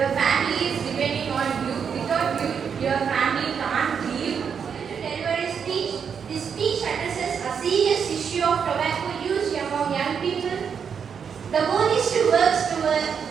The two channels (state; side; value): quieter; left; 6.9 dB